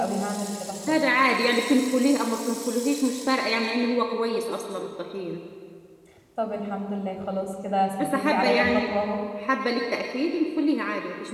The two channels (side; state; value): both; identical; correlation 1.00